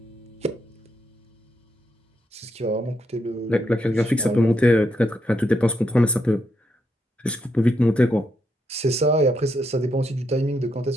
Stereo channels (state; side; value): normal; both; correlation 0.79